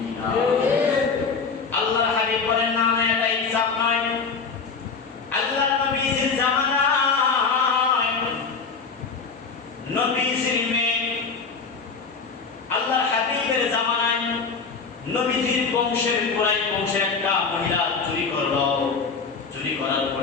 কিনা? আল্লাহর হাবিব বলেন, না এটা ইনসাফ নয়। আল্লাহর নবীর জামানায় নবীর মেয়ে, আল্লাহর হাবিবের জামানায় নবীজির বংশের কুরাইশ বংশের একটা মহিলা চুরি করলো। চুরি করার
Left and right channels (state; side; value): quieter; right; 5.0 dB